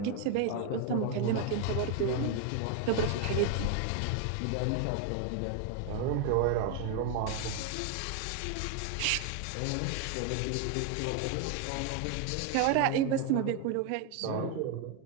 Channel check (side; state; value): both; different; correlation 0.01